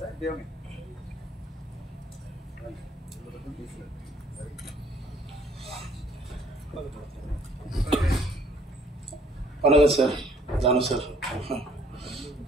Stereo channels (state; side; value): normal; both; correlation 0.60